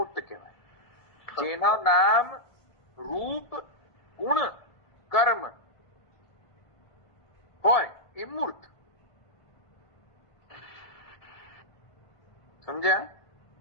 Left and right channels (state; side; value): late; right; 1.7 ms